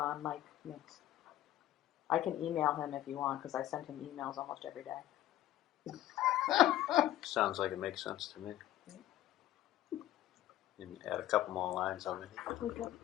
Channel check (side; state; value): right; quieter; 13.8 dB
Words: Mike Mix? I can email him if you want, because I send him emails almost every day. Sounds like it makes sense to me. And add a couple more lines on it.